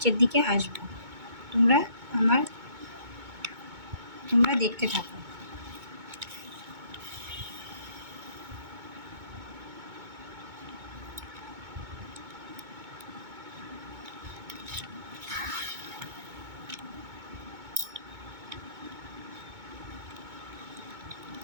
দিকে আসবো। তোমরা দেখতে থাকো।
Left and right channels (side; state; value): left; late; 2.2 ms